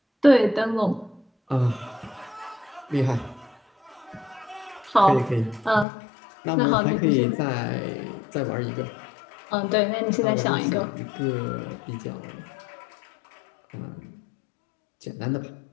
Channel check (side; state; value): right; drops out; at 5.9 s